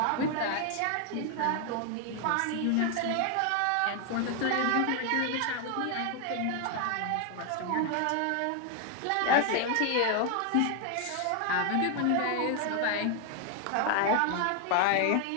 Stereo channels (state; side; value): different; both; correlation 0.00